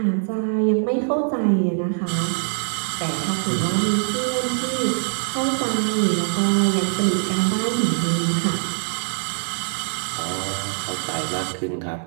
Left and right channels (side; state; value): left; silent; digital silence